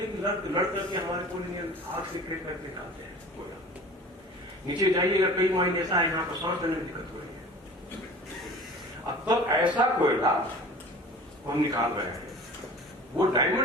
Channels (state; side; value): normal; both; correlation 0.42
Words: करके हमारे कोयले आग से क्रेक करके निकालते हैं कोयला। नीचे जाइएगा, कई माइन ऐसा है यहाँ पर सांस लेने में दिक्कत हो रही है। अब तक ऐसा कोयला हम निकाल रहे हैं, वो